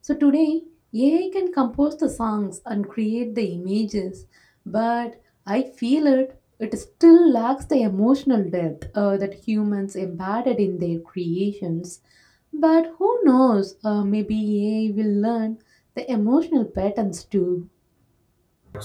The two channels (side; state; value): both; identical; correlation 1.00